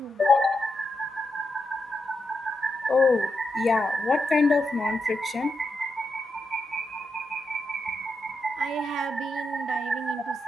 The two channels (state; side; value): normal; both; correlation 0.84